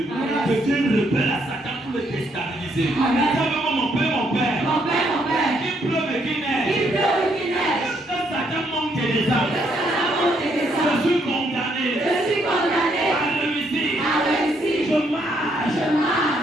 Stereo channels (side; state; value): both; normal; correlation 0.72